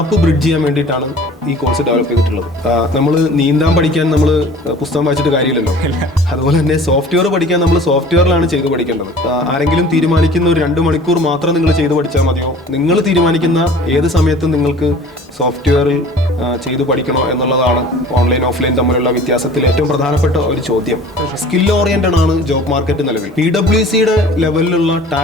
ബ്രിഡ്ജ് ചെയ്യാൻ വേണ്ടിയിട്ടാണ് ഈ കോഴ്സ് ഡെവലപ്പ് ചെയ്തിട്ടുള്ളത്. നമ്മൾ നീന്താൻ പഠിക്കാൻ നമ്മൾ പുസ്തകം വായിച്ചിട്ട് കാര്യമില്ലല്ലോ. അതുപോലെ തന്നെ സോഫ്റ്റ്വെയർ പഠിക്കാൻ നമ്മൾ സോഫ്റ്റ്വെയറിലാണ് ചെയ്ത് പഠിക്കേണ്ടത്. ആരെങ്കിലും തീരുമാനിക്കുന്ന ഒരു 2 മണിക്കൂർ മാത്രം നിങ്ങൾ ചെയ്ത് പഠിച്ചാൽ മതിയോ? നിങ്ങൾ തീരുമാനിക്കുന്ന ഏത് സമയത്തും നിങ്ങൾക്ക് സോഫ്റ്റ്വെയറിൽ ചെയ്തു പഠിക്കണോ എന്നുള്ളതാണ് ഓൺലൈൻ ഓഫ്ലൈൻ തമ്മിലുള്ള വ്യത്യാസത്തിൽ ഏറ്റവും പ്രധാനപ്പെട്ട ഒരു ചോദ്യം. സ്കിൽ ഓറിയന്റഡ് ആണ് ജോബ് മാർക്കറ്റ് നിലവിൽ. PwCയുടെ ലെവലിലുള്ള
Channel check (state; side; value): normal; both; correlation 0.46